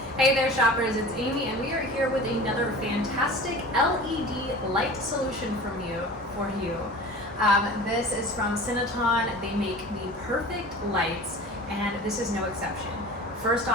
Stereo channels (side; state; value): both; normal; correlation 0.39